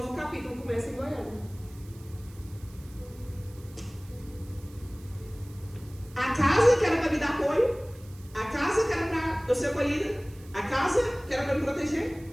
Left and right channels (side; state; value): right; noise; hiss, 24 dB below the sound